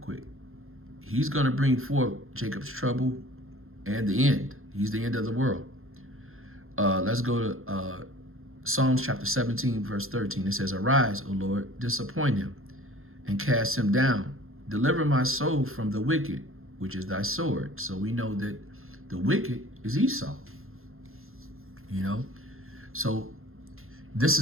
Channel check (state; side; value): late; left; 0.61 ms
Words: quick. He's going to bring forth Jacob's trouble and the end. He's the end of the world. Let's go to Psalms chapter 17, verse 13. It says, "Arise, O Lord, disappoint him, and cast him down. Deliver my soul from the wicked, which is thy sword." So we know that the wicked is Esau, So this